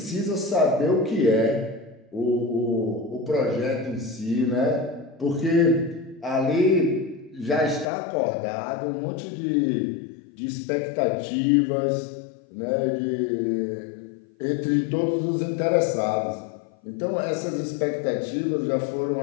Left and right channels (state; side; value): drops out; right; at 7.9 s